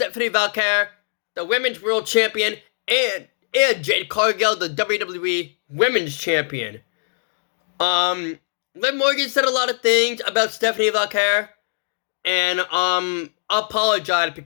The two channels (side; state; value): right; silent; digital silence